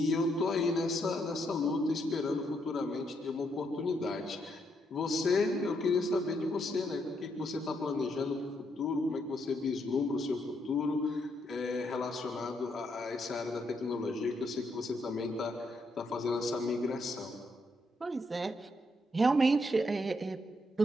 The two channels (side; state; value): both; normal; correlation 0.76